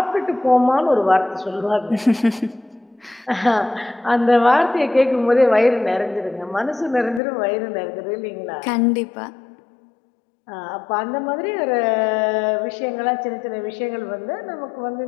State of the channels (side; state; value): right; drops out; at 7.2 s